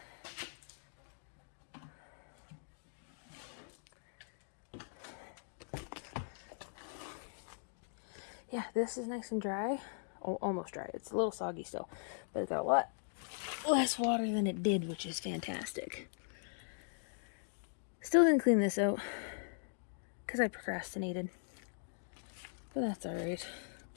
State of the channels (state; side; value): silent; right; digital silence